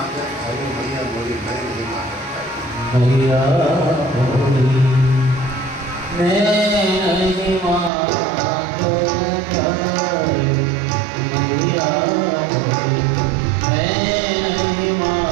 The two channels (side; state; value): left; drops out; at 7.9 s